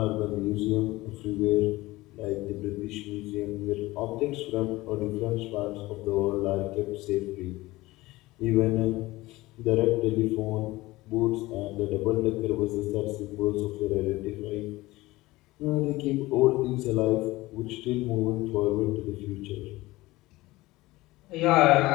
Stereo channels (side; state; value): right; quieter; 19.3 dB